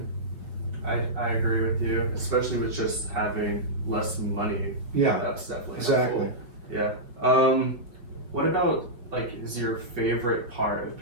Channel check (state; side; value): late; left; 5.6 ms